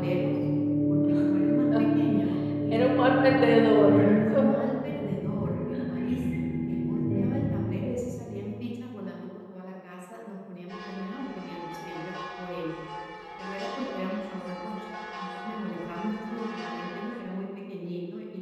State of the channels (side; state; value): both; identical; correlation 1.00